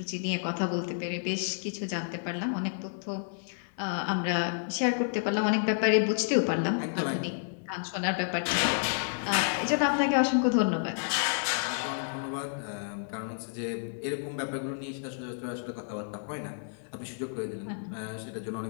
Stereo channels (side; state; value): right; silent; 58 dB below the other